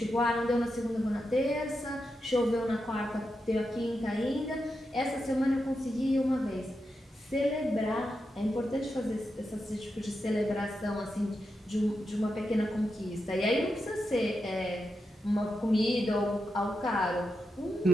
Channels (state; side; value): normal; both; correlation 0.87